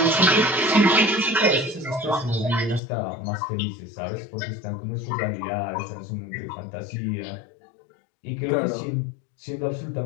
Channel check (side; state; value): right; drops out; at 2.8 s